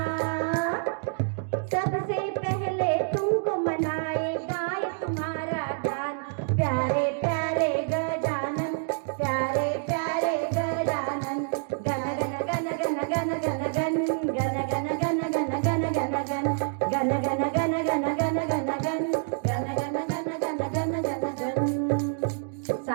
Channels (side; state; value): left; silent; digital silence